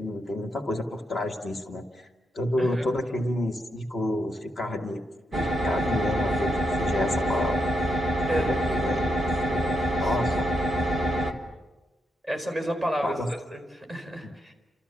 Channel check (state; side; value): normal; both; correlation 0.82